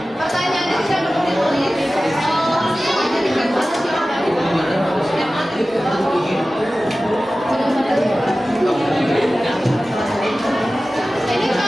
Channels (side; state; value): both; normal; correlation 0.96